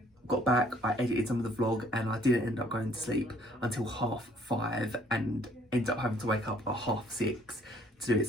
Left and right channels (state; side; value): normal; both; correlation 0.61